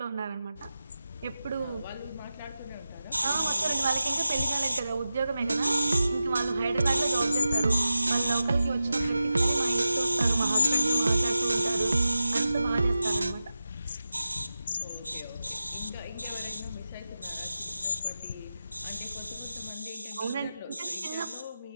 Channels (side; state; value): both; inverted; correlation -0.92